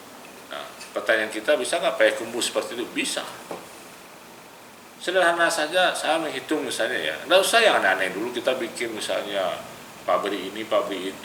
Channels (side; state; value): both; identical; correlation 1.00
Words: Nah, pertanyaan kita, bisa nggak Payakumbuh seperti itu? Bisa. Sederhana saja, saya menghitung misalnya ya, nggak usah yang aneh-aneh dulu kita bikin misalnya pabrik ini, pabrik